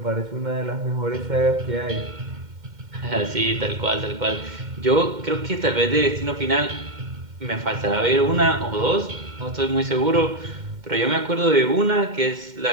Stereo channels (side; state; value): left; late; 2.1 ms